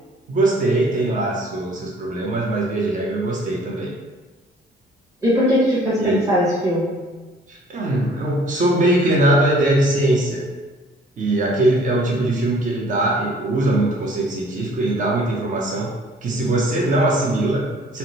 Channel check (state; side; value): normal; both; correlation 0.55